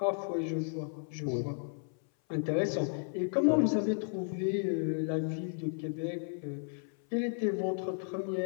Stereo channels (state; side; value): silent; right; 55 dB below the other